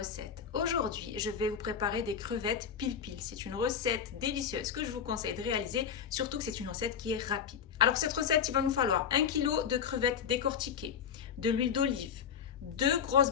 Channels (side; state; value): right; quieter; 7.7 dB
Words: Aujourd'hui, je vais vous préparer des crevettes pil-pil. C'est une recette délicieuse que je vous conseille de réaliser, surtout que c'est une recette qui est rapide. Alors pour cette recette, il va nous falloir 1 kg de crevettes décortiquées, de l'huile d'olive, 2 grosses